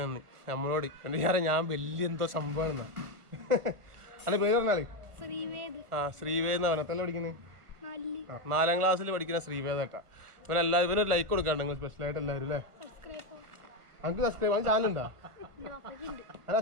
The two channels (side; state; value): left; late; 1.4 ms